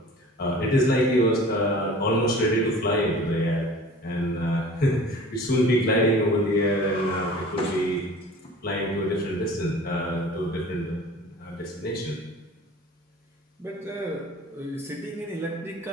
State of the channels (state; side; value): normal; both; correlation 0.43